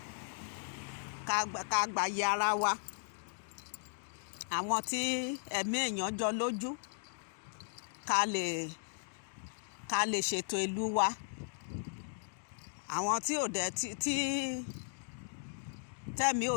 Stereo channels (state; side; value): silent; right; digital silence